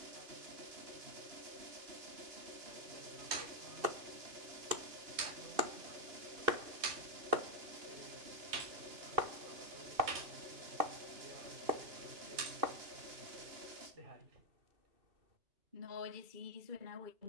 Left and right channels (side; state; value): left; late; 2.6 ms